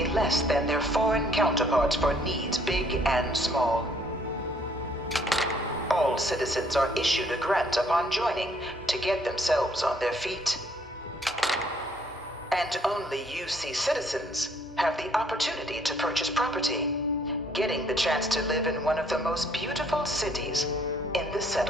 less than their foreign counterparts for needs big and small. All citizens are issued a grant upon joining to get themselves on their feet. And only UC citizens have the opportunity to purchase property, getting the chance to live in one of the most beautiful cities in the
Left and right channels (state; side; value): normal; both; correlation 0.64